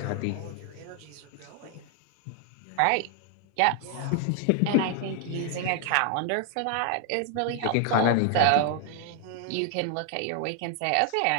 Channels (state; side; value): different; both; correlation 0.00